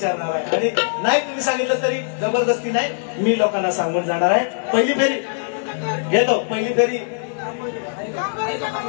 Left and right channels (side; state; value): right; silent; digital silence